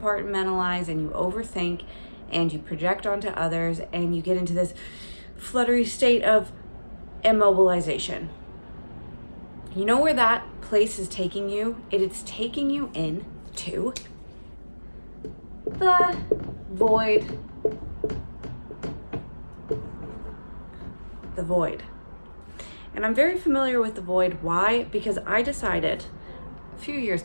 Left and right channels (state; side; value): inverted; both; correlation -1.00